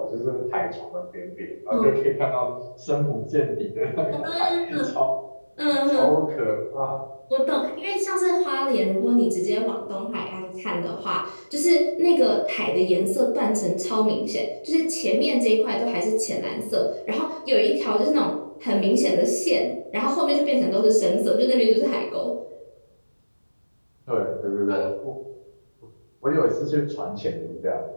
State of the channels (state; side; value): inverted; both; correlation -1.00